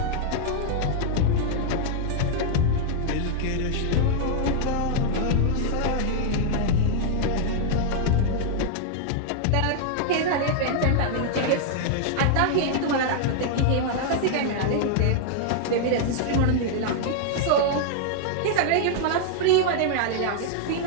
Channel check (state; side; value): different; both; correlation 0.00